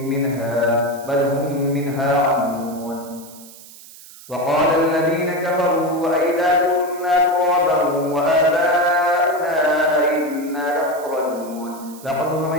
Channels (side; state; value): right; noise; hiss, 19 dB below the sound